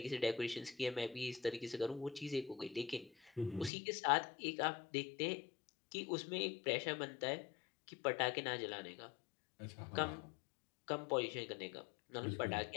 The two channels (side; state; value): right; drops out; at 3.7 s